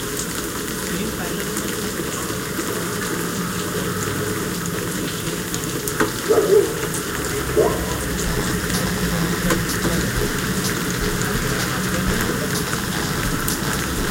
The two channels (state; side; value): identical; both; correlation 1.00